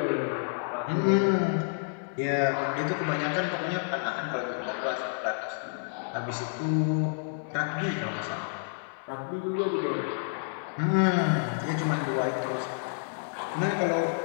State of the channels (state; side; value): silent; right; digital silence